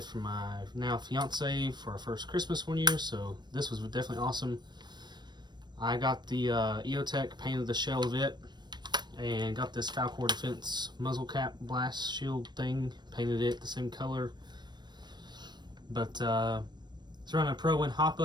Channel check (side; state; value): left; late; 0.21 ms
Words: from my now fiance for our first Christmas one year, so this was definitely awesome. I got the EOTech, painted the shell of it, and got this Falcor Defense muzzle cap blast shield thing, painted it the same color. But it's running a Pro Win hop